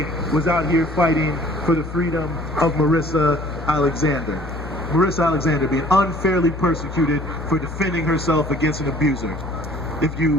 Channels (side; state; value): left; noise; hum, 9 dB below the sound